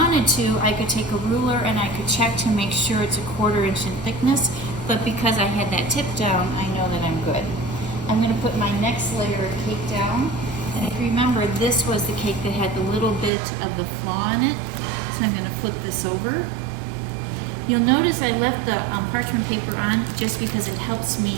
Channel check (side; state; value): left; drops out; at 13.3 s